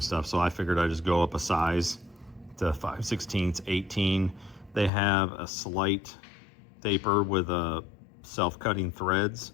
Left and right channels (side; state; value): right; drops out; at 4.9 s